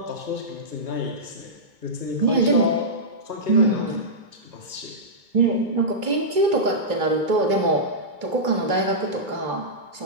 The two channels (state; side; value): late; left; 2.2 ms